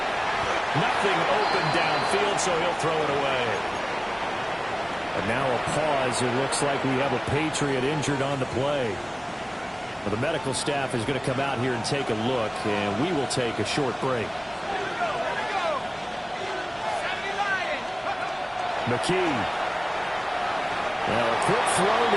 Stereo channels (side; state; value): both; identical; correlation 1.00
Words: Nothing open downfield, so he'll throw it away. And now a pause. It looks like we have a Patriot injured on the play. Well, the medical staff is going to come out here and take a look, and we will take a short break. McKee. Now a quick throw